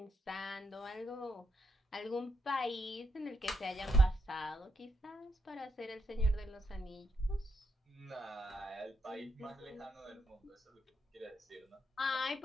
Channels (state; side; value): normal; both; correlation 0.80